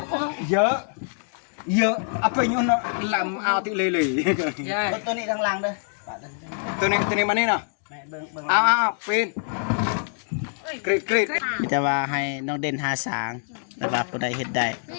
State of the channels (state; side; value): silent; right; digital silence